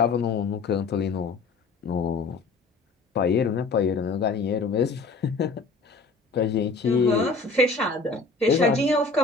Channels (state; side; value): quieter; right; 4.0 dB